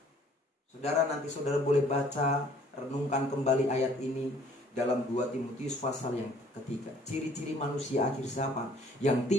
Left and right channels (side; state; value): both; normal; correlation 0.57